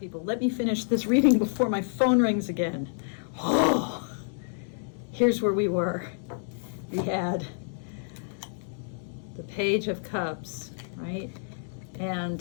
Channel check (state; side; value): silent; right; digital silence